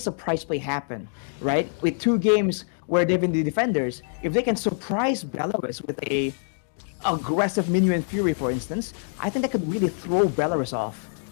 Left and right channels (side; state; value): right; silent; digital silence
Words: play happen, right? With 2 games where they've been the defenders, if they can surprise Belarus with a aggressive Minuan Fury, for instance, I think that could really throw Belarus off.